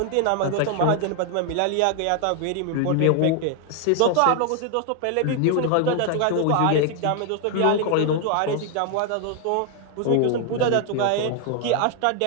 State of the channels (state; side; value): different; both; correlation 0.00